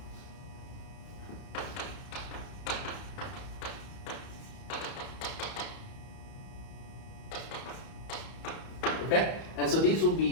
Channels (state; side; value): late; right; 31 ms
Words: Okay, and so these will